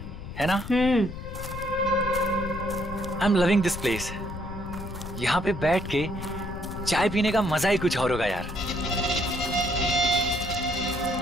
है ना? I am loving this place. यहाँ पे बैठ के चाय पीने का मजा ही कुछ और होगा यार।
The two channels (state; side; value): noise; left; rumble, 10 dB below the sound